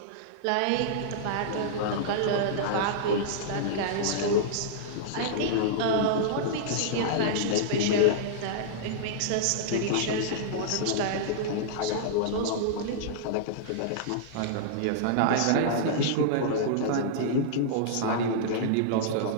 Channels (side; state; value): both; different; correlation -0.02